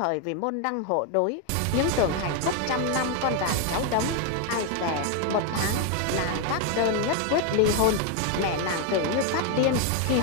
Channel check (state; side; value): different; both; correlation 0.01